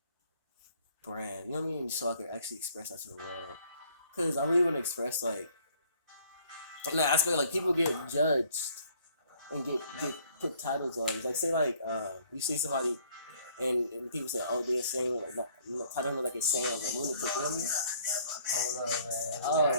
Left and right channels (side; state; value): both; inverted; correlation -0.60